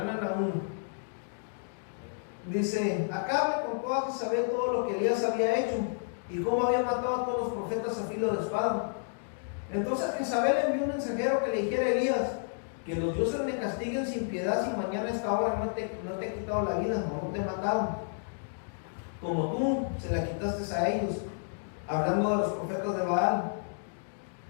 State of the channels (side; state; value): right; silent; digital silence